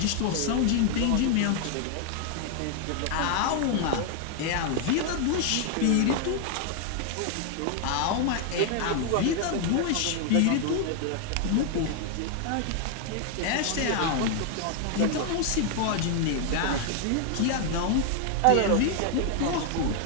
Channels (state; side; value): different; both; correlation 0.00